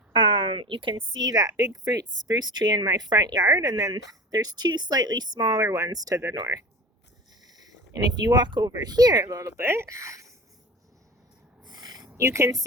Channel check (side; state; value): both; normal; correlation 0.34